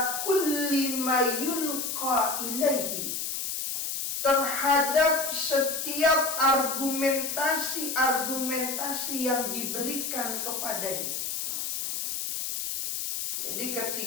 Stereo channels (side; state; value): left; noise; hiss, 3 dB below the sound